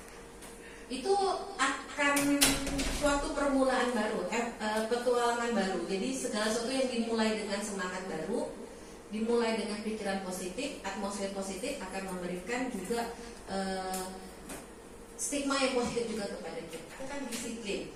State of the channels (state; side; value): identical; both; correlation 1.00